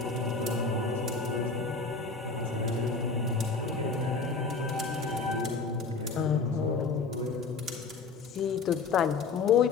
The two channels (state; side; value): quieter; right; 4.5 dB